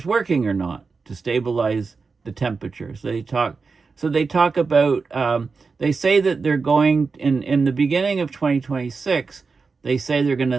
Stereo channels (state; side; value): quieter; left; 4.7 dB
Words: working or not to stabilize the temperature. So they talk about, they say that they're going, in the beginning of 2026, they say they're going to